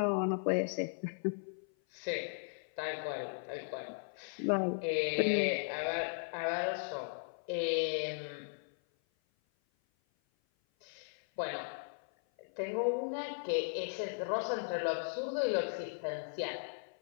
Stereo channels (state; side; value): silent; right; 53 dB below the other